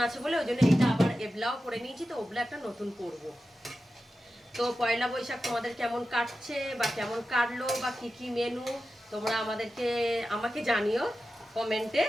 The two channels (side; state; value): both; normal; correlation 0.92